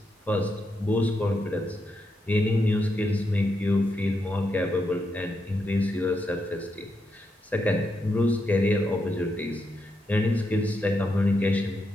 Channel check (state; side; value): normal; both; correlation 0.82